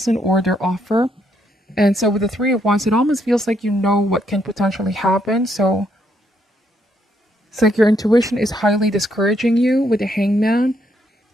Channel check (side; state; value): both; normal; correlation 0.74